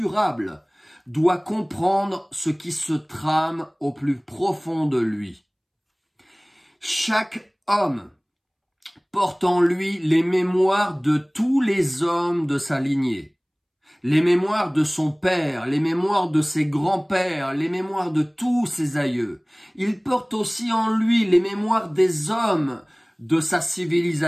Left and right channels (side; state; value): both; identical; correlation 1.00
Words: doit comprendre ce qui se trame au plus profond de lui. Chaque homme porte en lui les mémoires de tous les hommes de sa lignée. Les mémoires de son père, les mémoires de ses grands-pères, les mémoires de tous ses aïeux. Il porte aussi en lui les mémoires des hommes de sa